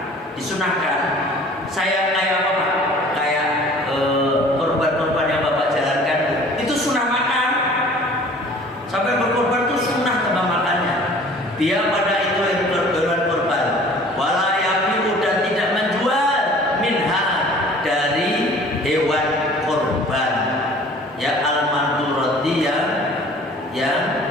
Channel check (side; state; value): both; normal; correlation 0.49